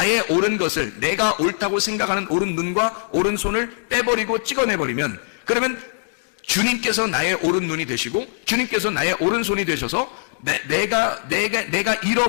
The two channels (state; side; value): silent; right; digital silence